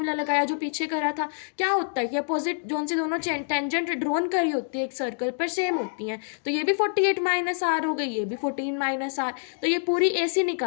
लगाया जो पीछे करा था, क्या होता है कि अपोजिट जोन से दोनों टेंजेंट ड्रॉन करी होती है एक सर्कल पर सेम होती हैं, तो ये भी 48 माइनस R -r हो गई, ये भी 14 - r। तो ये पूरी AC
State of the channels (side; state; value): right; silent; digital silence